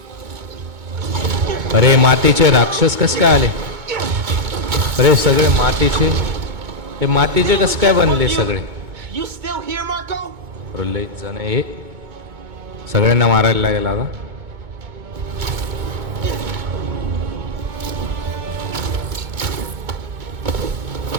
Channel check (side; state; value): left; late; 2.2 ms